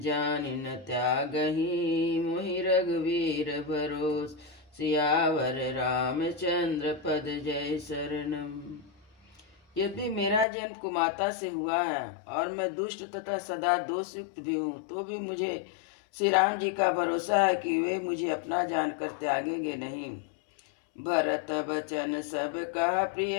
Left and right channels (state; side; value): drops out; right; at 10.5 s